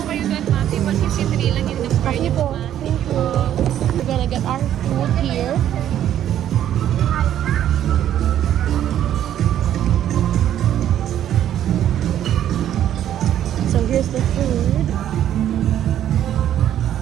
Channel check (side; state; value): left; quieter; 11.0 dB